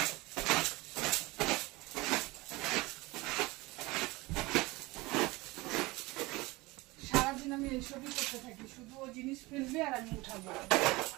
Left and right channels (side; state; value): left; quieter; 22.1 dB